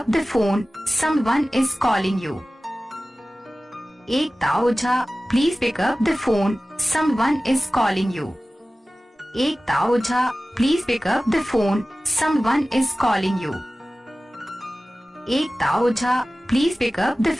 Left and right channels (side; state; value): both; normal; correlation 0.97